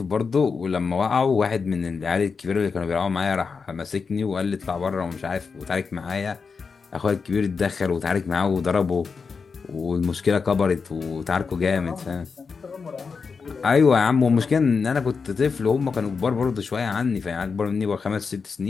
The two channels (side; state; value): right; quieter; 5.2 dB